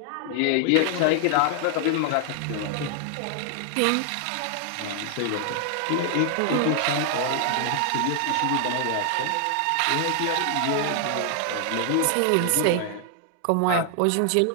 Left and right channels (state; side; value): different; both; correlation 0.00